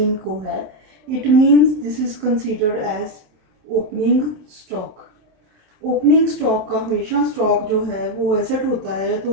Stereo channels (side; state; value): left; late; 26 ms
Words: को है. It means this is considered as opening stock. Opening stock का हमेशा स्टॉक जो है वो एसेट होता है तो